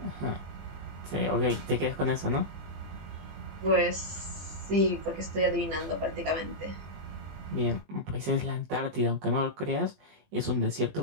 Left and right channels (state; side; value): late; left; 20 ms